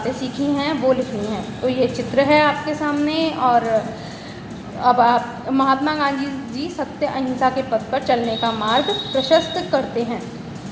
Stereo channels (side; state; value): both; identical; correlation 1.00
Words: सीखी हैं वो लिखनी है। तो ये चित्र है आपके सामने। और अब आप महात्मा गांधी जी सत्य अहिंसा के पथ पर चलने का मार्ग प्रशस्त करते हैं।